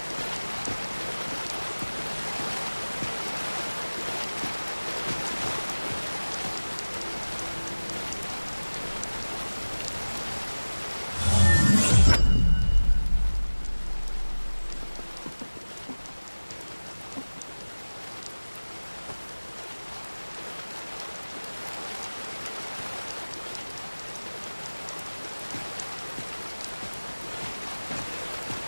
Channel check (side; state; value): both; inverted; correlation -1.00